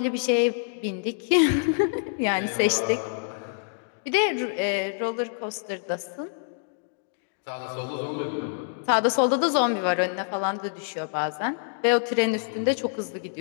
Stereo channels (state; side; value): silent; right; digital silence